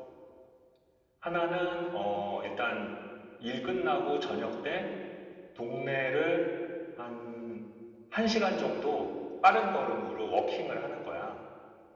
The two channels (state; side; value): identical; both; correlation 1.00